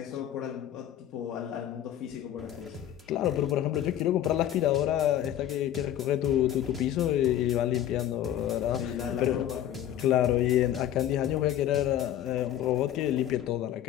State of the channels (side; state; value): right; quieter; 11.5 dB